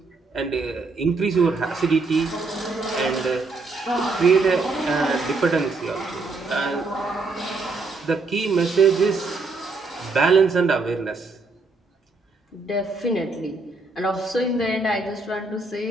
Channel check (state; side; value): quieter; left; 3.7 dB